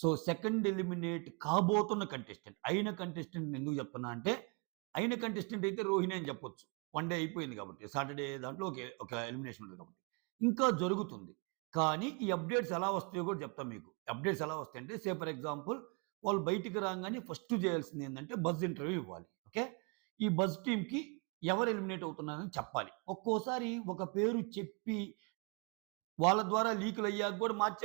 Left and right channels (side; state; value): left; quieter; 32.8 dB